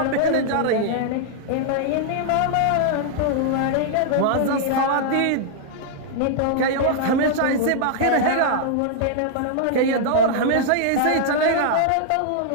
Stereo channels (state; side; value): different; both; correlation -0.01